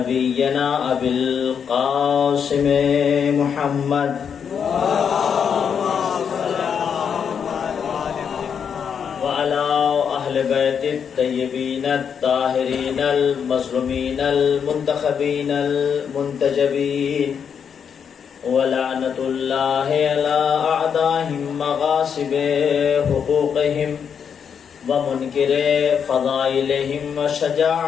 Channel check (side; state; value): right; quieter; 7.3 dB